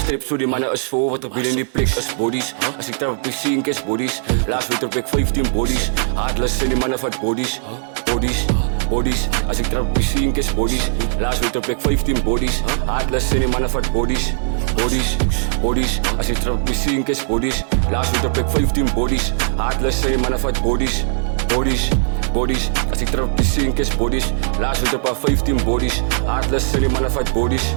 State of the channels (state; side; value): silent; left; digital silence